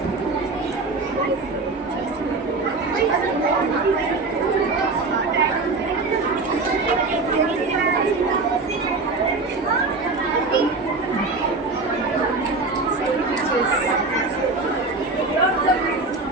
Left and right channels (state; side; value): quieter; left; 3.7 dB